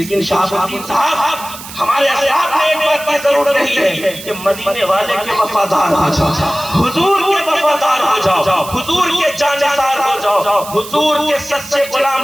شاہ الدین صاحب، ہمارے اسلاف نے ایک بات کی ضرورت نہیں ہے کہ مدینے والے کے وفادار ہو جاؤ، حضور کے وفادار ہو جاؤ، حضور کے جانثار ہو جاؤ، حضور کے سچے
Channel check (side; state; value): right; noise; hiss, 13 dB below the sound